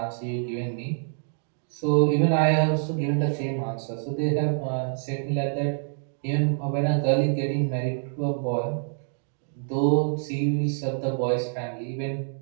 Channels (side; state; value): left; silent; digital silence